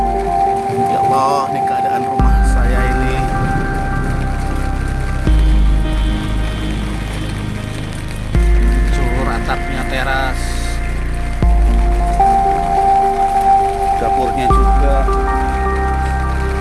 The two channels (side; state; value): both; identical; correlation 1.00